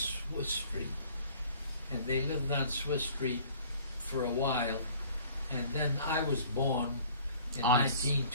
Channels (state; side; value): inverted; both; correlation -0.52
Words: Street, and they lived on Swiss Street for a while, and then I was born in On